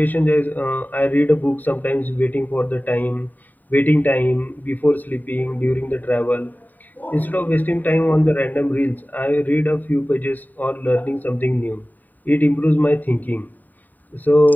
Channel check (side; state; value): right; late; 0.086 ms